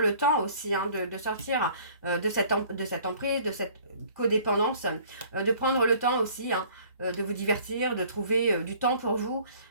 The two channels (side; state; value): both; inverted; correlation -0.53